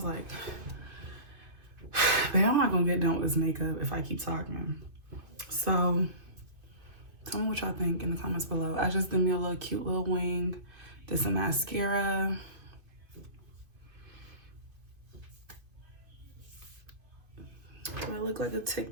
like, babe, I'm not gonna get done with this makeup if I keep talking. So tell me what y'all think in the comments below. I just did me a little cute little wing, did some mascara. Do I look like a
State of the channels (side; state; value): left; late; 2.5 ms